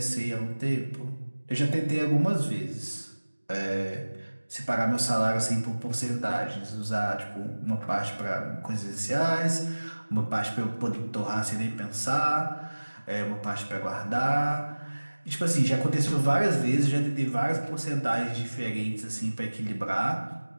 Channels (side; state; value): both; inverted; correlation -1.00